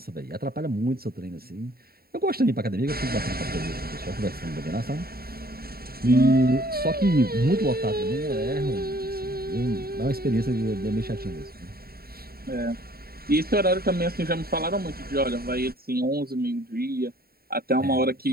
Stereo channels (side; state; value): left; late; 0.44 ms